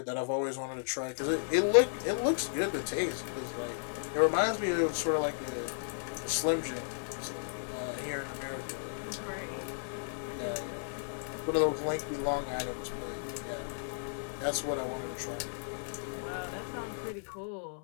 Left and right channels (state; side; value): silent; right; digital silence